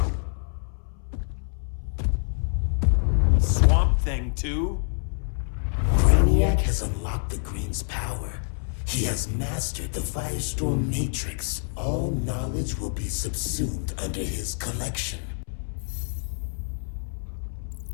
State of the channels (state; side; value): silent; right; 61 dB below the other